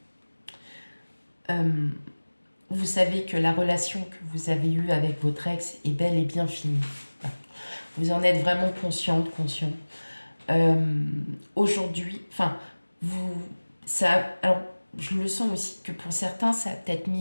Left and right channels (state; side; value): inverted; both; correlation -1.00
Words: hein, vous savez que la relation que vous avez eue avec votre ex est bel et bien finie. Vous en êtes vraiment conscient. Aujourd'hui, enfin, alors, je le sens aussi que pour certains, ça a peut-être